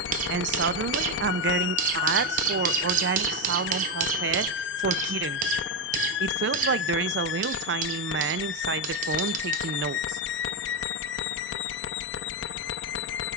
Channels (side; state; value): both; normal; correlation 0.08